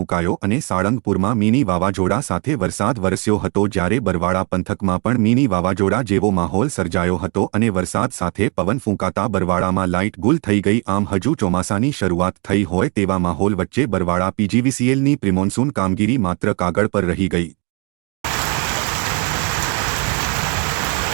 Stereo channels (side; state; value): left; quieter; 32.7 dB